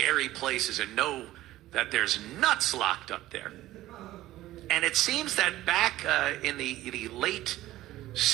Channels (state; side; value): quieter; left; 15.6 dB